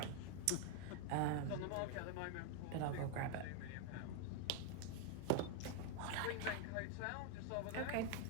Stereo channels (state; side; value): different; both; correlation 0.00